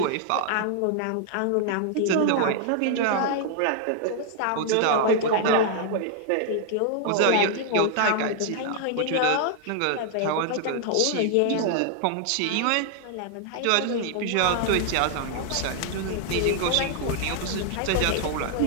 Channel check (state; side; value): different; both; correlation 0.00